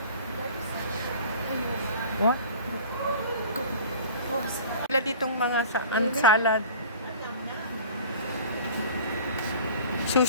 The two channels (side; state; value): both; inverted; correlation -0.43